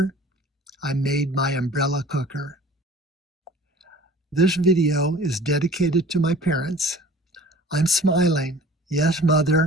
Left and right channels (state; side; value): normal; both; correlation 0.46